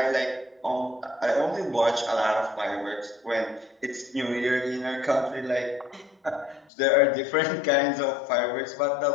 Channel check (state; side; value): drops out; right; at 6.7 s